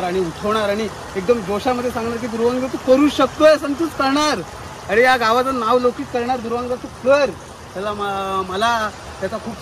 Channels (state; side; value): identical; both; correlation 1.00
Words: आणि उठवणार आणि एकदम जोशामध्ये सांगणार की ध्रुवांग तू करू शकतोय, संतूच करणार, अरे या गावाचं नाव लौकिक करणार ध्रुवांग तू कर. त्याला मला त्याचा खूप